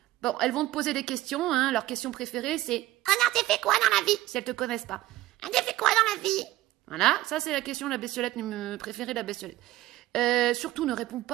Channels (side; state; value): left; quieter; 16.1 dB